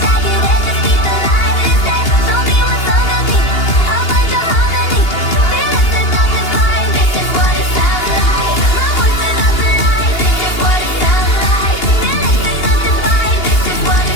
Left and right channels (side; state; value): right; late; 2.8 ms